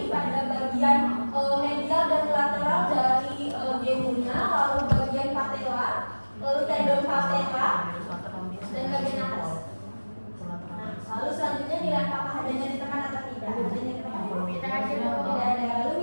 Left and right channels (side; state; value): both; inverted; correlation -1.00